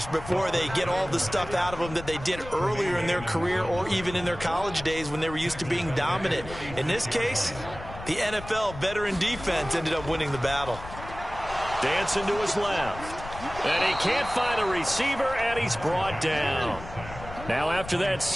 before they get all the stuff out of them that they did earlier in their career or even in their college days when they were used to being dominant. In this case, the NFL veteran defense ended up winning the battle. Dancing to his left. And he can't find a receiver, and he's brought down. Now after that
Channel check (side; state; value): left; noise; rumble, 13 dB below the sound